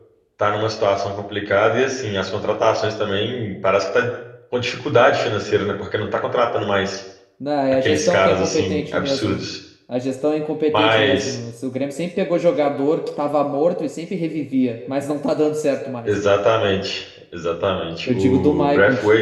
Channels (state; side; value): identical; both; correlation 1.00